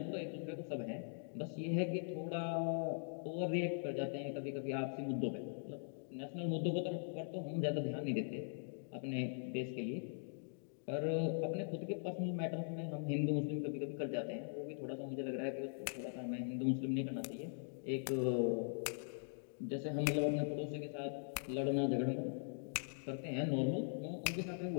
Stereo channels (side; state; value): right; silent; digital silence